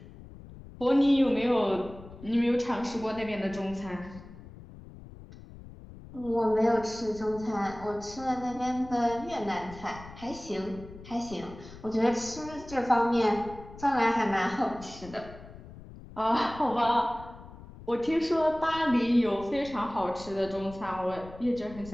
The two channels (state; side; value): noise; left; rumble, 17 dB below the sound